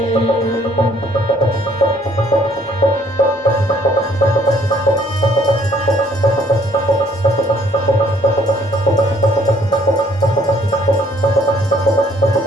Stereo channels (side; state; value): both; normal; correlation 0.62